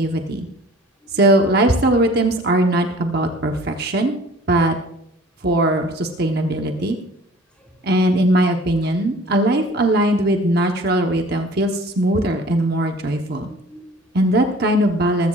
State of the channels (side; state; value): both; normal; correlation 0.49